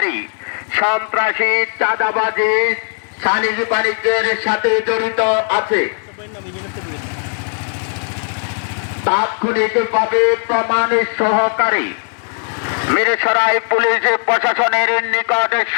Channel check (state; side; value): silent; right; 58 dB below the other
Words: সন্ত্রাসী, চাঁদাবাজি, সালিসি বাণিজ্যের সাথে জড়িত আছে, তাৎক্ষণিকভাবে প্রমাণ সহকারে মিরসরাই পুলিশ প্রশাসনের নিকট